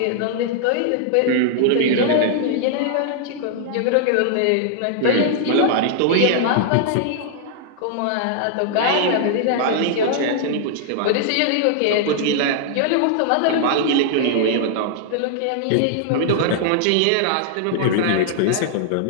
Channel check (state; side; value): different; both; correlation -0.01